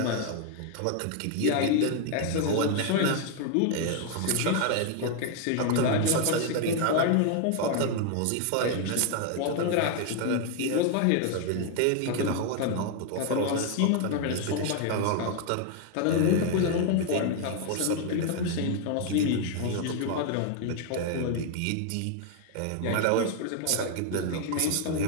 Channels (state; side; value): different; both; correlation 0.00